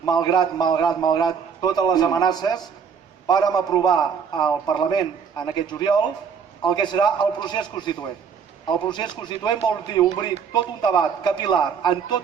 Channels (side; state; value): left; quieter; 6.6 dB